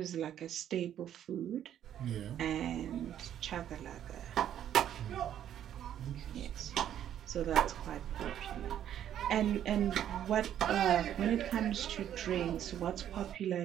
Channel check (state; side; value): quieter; left; 10.5 dB